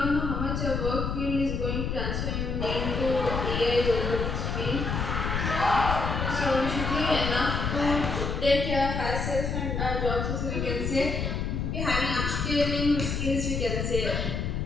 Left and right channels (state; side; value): noise; left; rumble, 1 dB below the sound